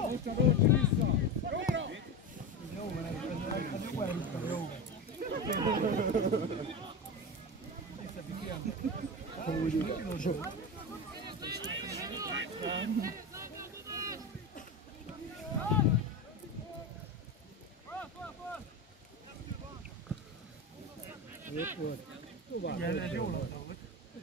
Ott vissza. Jó van, ez jó elhúztam, jó. Ott volt. Tovább. Igen, ez jó labda volt.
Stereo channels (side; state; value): both; normal; correlation 0.22